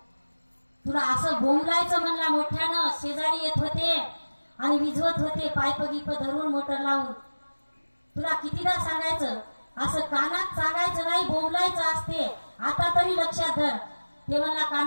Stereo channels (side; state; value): both; inverted; correlation -1.00